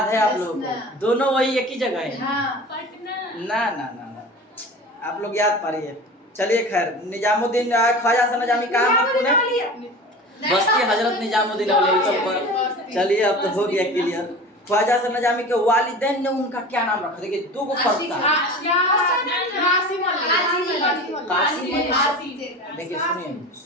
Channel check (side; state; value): both; normal; correlation 0.35